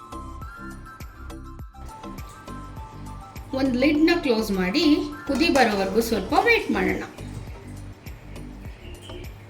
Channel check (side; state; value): both; identical; correlation 1.00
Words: ಒಂದು ಲಿಡ್ನ ಕ್ಲೋಸ್ ಮಾಡಿ ಕುದಿ ಬರೋವರೆಗೂ ಸ್ವಲ್ಪ ವೇಟ್ ಮಾಡೋಣ.